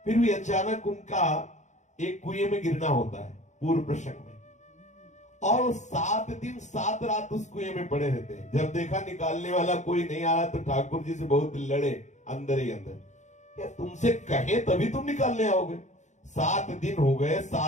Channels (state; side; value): late; right; 0.35 ms